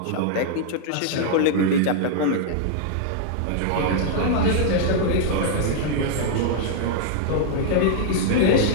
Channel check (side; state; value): both; different; correlation -0.01